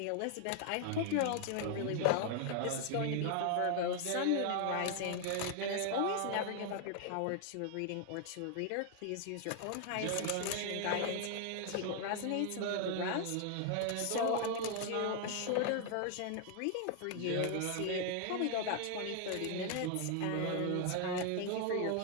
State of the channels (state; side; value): different; both; correlation 0.00